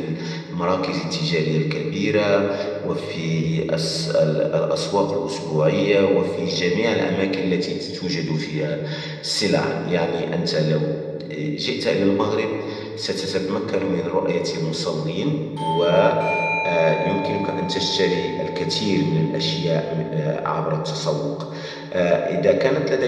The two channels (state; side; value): identical; both; correlation 1.00